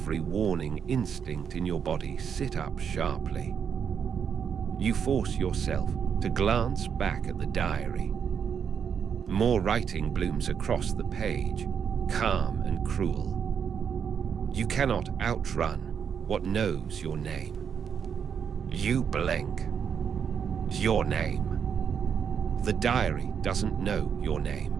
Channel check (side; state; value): left; quieter; 7.4 dB